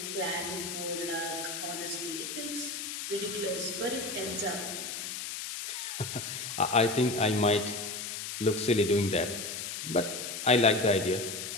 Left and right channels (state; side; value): noise; left; hiss, 6 dB below the sound